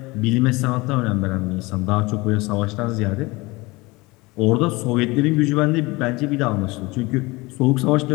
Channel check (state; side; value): quieter; right; 23.2 dB